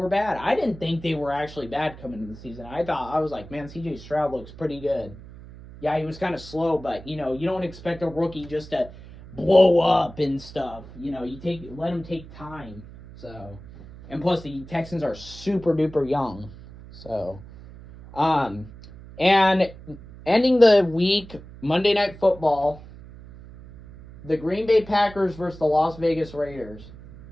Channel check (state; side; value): noise; right; hum, 17 dB below the sound